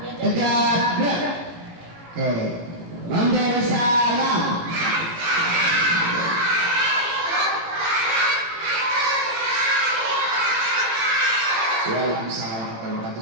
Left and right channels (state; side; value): late; left; 18 ms